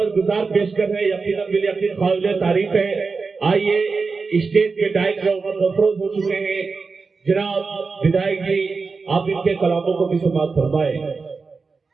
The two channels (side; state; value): left; quieter; 4.5 dB